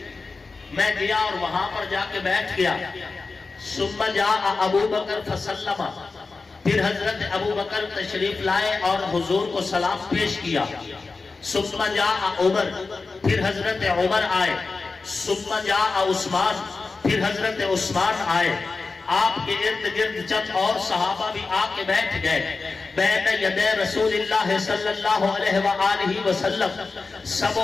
میں گیا اور وہاں پر جا کے بیٹھ گیا. ثم جاء ابو بکر فسلم، پھر حضرت ابو بکر تشریف لائے اور حضور کو سلام پیش کیا. ثم جاء عمر، پھر حضرت عمر آئے. ثم جاء عثمان، پھر حضرت عثمان آئے. آپ کے ارد گرد چند اور صحابہ بھی آ کے بیٹھ گئے. بین یدی رسول اللہ صلی اللہ علیہ وآلہ وسلم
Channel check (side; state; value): right; quieter; 4.1 dB